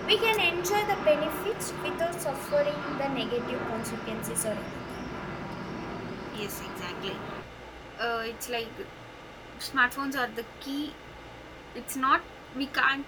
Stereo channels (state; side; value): identical; both; correlation 1.00